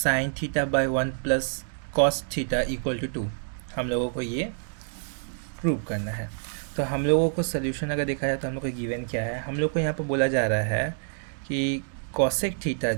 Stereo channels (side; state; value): left; silent; digital silence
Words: theta by 1 plus cos theta equal to 2। हम लोगों को ये प्रूव करना है। तो हम लोगों को सोल्यूशन अगर देखा जाए तो हम लोग को गिवन क्या है, हम लोग को यहाँ पर बोला जा रहा है कि कॉसेक थीटा